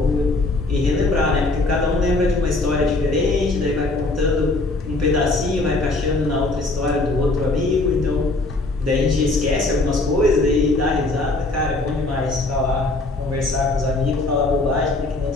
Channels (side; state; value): right; quieter; 3.1 dB